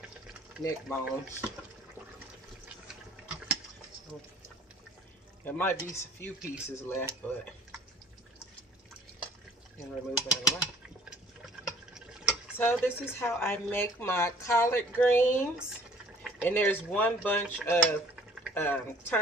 neck bones. So there might be a few pieces left, but I can remove that away. So this is how I make my collard greens, and there's one bunch of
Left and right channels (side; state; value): both; normal; correlation 0.54